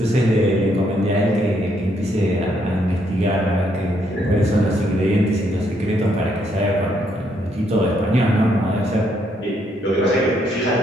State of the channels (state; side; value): normal; both; correlation 0.73